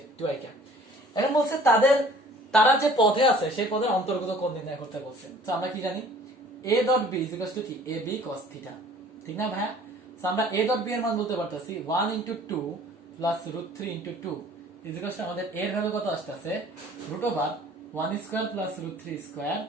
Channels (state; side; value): normal; both; correlation 0.51